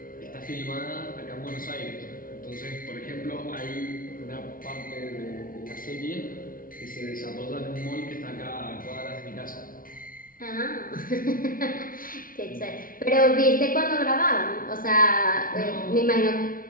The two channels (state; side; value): late; right; 0.41 ms